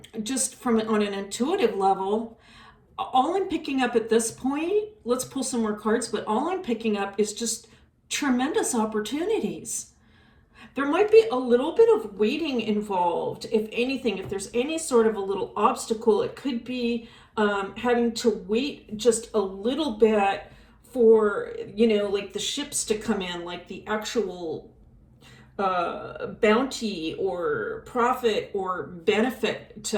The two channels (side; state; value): both; identical; correlation 1.00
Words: just on an intuitive level, all I'm picking up at this point, let's pull some more cards, but all I'm picking up is just tremendous opportunities. There might be a little bit of waiting involved, if anything. If there's any sort of a little obstacle, it could be having to wait just a little bit for, like the ships to come in, like the actual bounty or profit or benefit